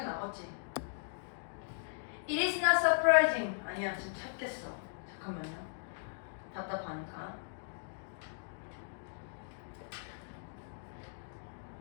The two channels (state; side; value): silent; right; digital silence